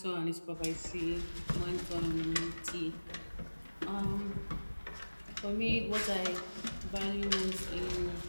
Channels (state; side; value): inverted; both; correlation -1.00